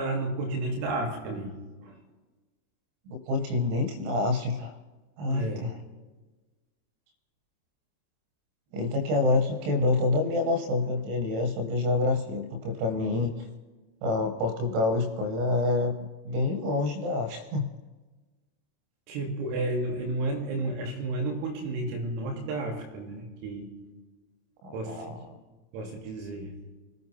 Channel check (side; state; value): left; late; 27 ms